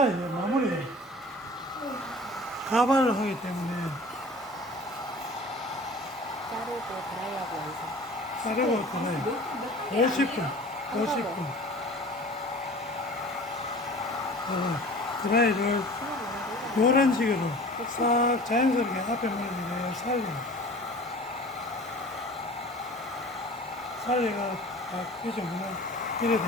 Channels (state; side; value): normal; both; correlation 0.42